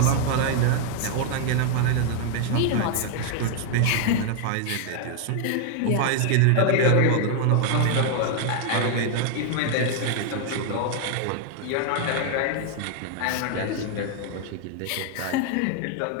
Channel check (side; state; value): both; different; correlation 0.00